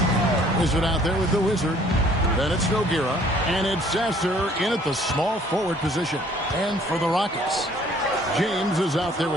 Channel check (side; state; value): both; normal; correlation 0.58